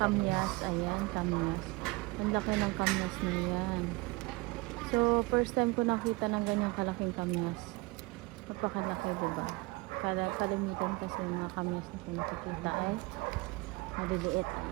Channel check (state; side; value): quieter; left; 24.3 dB